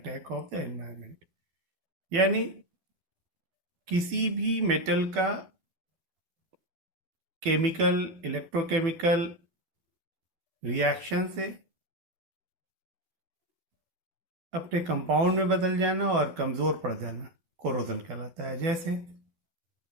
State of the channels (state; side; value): late; left; 12 ms